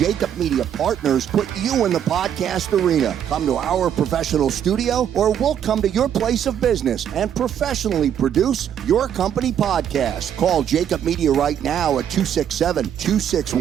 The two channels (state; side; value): quieter; left; 9.4 dB